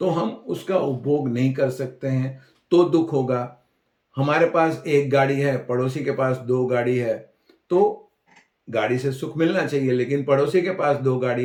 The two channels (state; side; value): identical; both; correlation 1.00